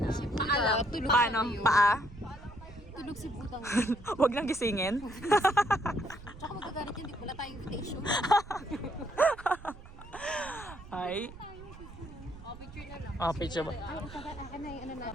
Paalam. Tulog Paano? si Paa? Tulog si Butang. Huwag lang gisingin. Tsaka magagalit yun. Wala tayong invitation. Ay. Oh, picture na lang. Oh, picture ba? Ay, akin na yung ano na.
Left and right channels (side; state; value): right; noise; rumble, 17 dB below the sound